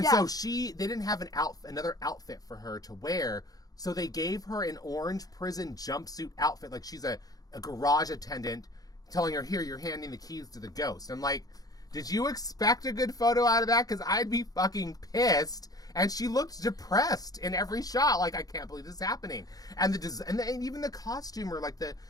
so they didn't have another outfit for her to wear, so they gave her an orange prison jumpsuit outfit, like she's a garage attendant, telling her, here, you're handing the keys to the ghost. I'm like, did you expect a good photo out of that? Because I'd be fucking pissed. And she looked depressed in every shot. Like, I can't believe this is happening. And and even the costumer, like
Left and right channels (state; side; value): late; right; 0.18 ms